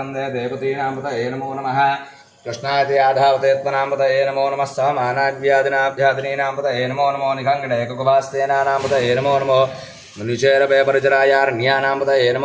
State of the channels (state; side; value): identical; both; correlation 1.00